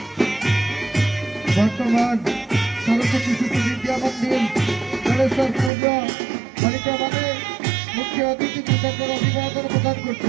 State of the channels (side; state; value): left; drops out; at 5.7 s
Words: বর্তমান সরস্বতী শিশু বিদ্যা মন্দির জলেশ্বরপুর বালিকা ভবনে মুখ্য অতিথি কৃতজ্ঞ অভিবাদন প্রদান